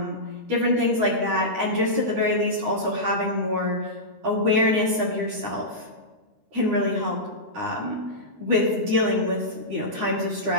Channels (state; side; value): late; left; 13 ms